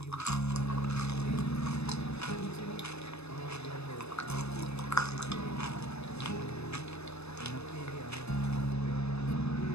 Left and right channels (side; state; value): right; late; 0.80 ms